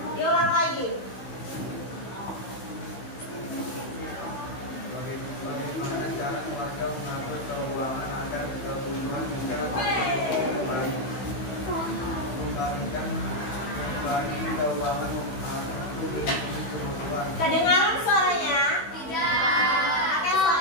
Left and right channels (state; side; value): late; right; 16 ms